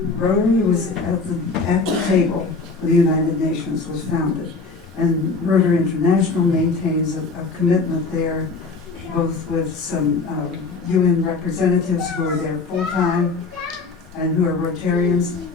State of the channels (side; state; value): right; quieter; 4.1 dB